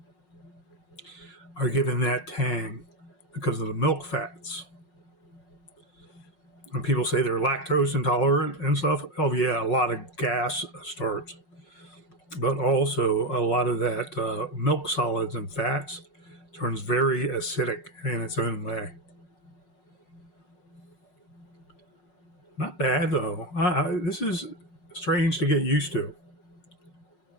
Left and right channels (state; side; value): late; right; 5.5 ms